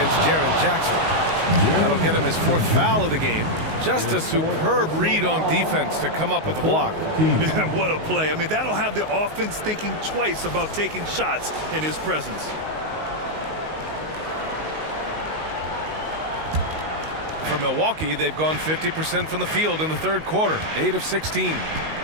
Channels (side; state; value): left; late; 19 ms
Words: Jaren Jackson. That'll get him his 4th foul of the game. Just a superb read on defense to come up with the block. What a play. I mean, that'll have the offense thinking twice about taking shots in his presence. For Milwaukee, they've gone 50% from the field in the third quarter, 8 of 16.